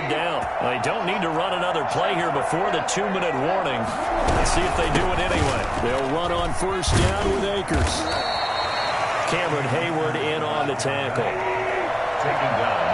down. They don't need to run another play here before the 2-minute warning. Let's see if they do it anyway. They'll run on first down with Akers. Cameron Hayward in on the tackle. Taken down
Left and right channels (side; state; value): both; identical; correlation 1.00